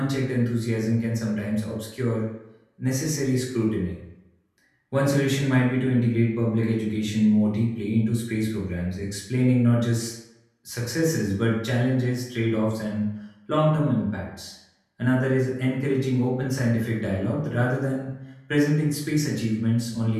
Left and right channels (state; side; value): identical; both; correlation 1.00